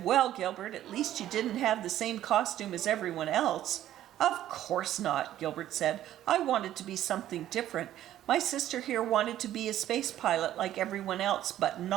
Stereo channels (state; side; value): quieter; left; 12.5 dB